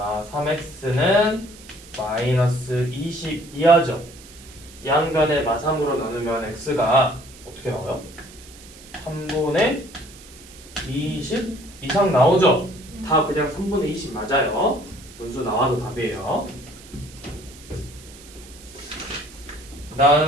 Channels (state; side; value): noise; right; hiss, 20 dB below the sound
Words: 3x는 마이너스 20 이하죠. 양간의 마 3으로 나누면 x가 어떻게 나와요? 3분의 20 이상 나오죠? 다 그냥 3분의 20 맞아요. 분수 나와도 답이에요.